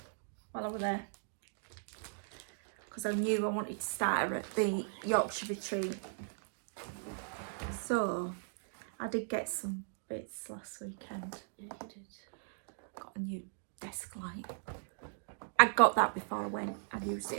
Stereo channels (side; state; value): left; silent; digital silence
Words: while I was there, because I knew I wanted to start her at the Yorkshire retreat. So I did get some bits last weekend. Yeah, you did. Got a new desk light. I got that before I went. I used it